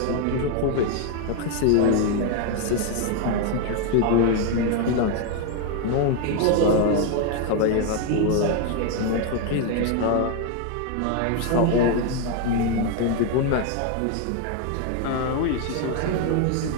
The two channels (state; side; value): different; both; correlation 0.01